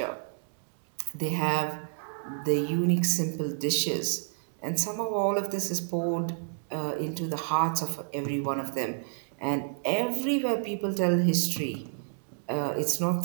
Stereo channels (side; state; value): left; silent; digital silence